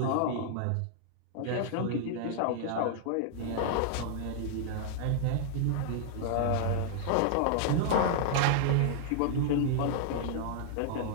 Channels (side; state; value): both; different; correlation -0.01